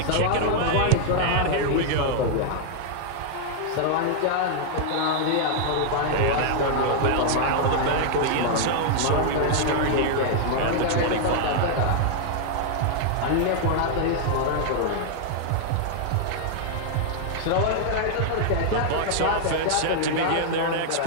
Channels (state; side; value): different; both; correlation -0.01